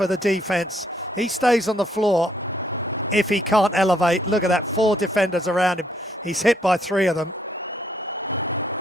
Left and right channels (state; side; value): normal; both; correlation 0.70